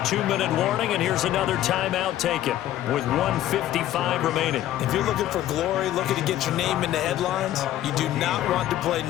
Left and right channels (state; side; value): quieter; right; 13.1 dB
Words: warning, and here's another timeout taken with 1:55 remaining. If you're looking for glory, looking to get your name in the headlines, you do not want to play